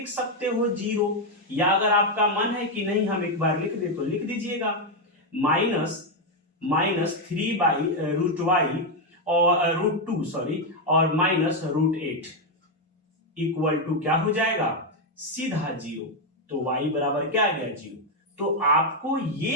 सकते हो 0, या अगर आपका मन है कि नहीं हम एक बार लिख दे तो लिख दीजिएगा, -3/√y और √2 सॉरी और -√8 इक्वल टू क्या हो जाएगा, सीधा 0। तो y बराबर क्या आ गया, 0। तो आपको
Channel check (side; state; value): both; normal; correlation 0.03